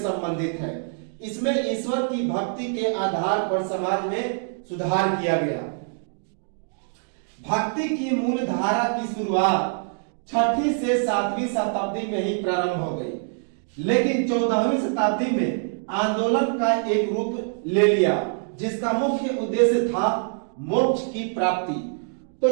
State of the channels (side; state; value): left; silent; 62 dB below the other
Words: है। इसमें ईश्वर की भक्ति के आधार पर समाज में सुधार किया गया। भक्ति की मूल धारा की शुरुआत 6वीं से 7वीं शताब्दी में ही प्रारंभ हो गई, लेकिन 14वीं शताब्दी में आंदोलन का एक रूप ले लिया, जिसका मुख्य उद्देश्य था मोक्ष की प्राप्ति। तो